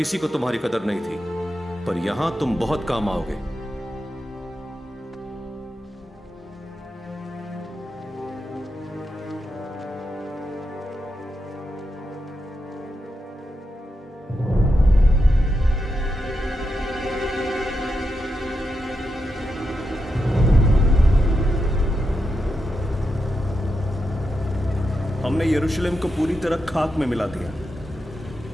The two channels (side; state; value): both; normal; correlation 0.86